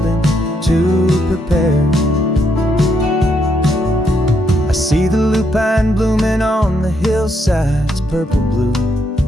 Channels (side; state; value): both; normal; correlation 0.76